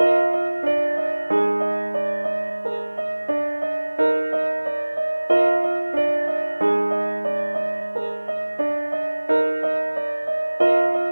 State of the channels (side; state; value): both; inverted; correlation -1.00